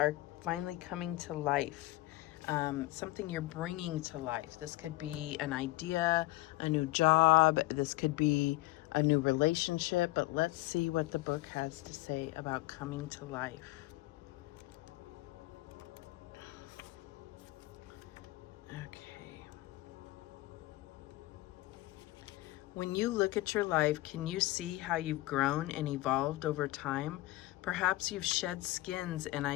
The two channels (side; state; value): right; quieter; 19.0 dB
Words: finally coming to life. Something you're bringing to life. This could be an idea, a new job. This could be a new relationship. But let's see what the book has to say about coming to life. Okay. When you look at your life, can you see how you've grown and evolved over time? Perhaps you've shed skins and